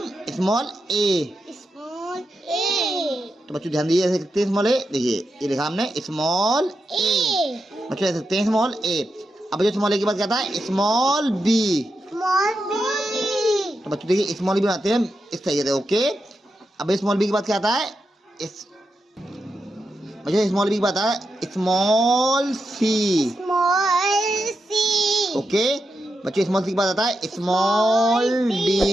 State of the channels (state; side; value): normal; both; correlation 0.87